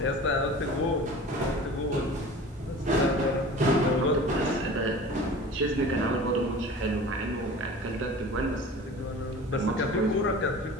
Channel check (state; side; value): normal; both; correlation 0.39